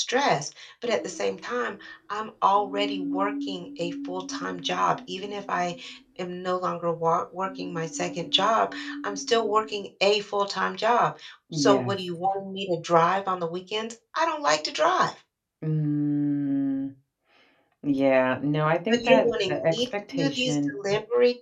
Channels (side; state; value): both; identical; correlation 1.00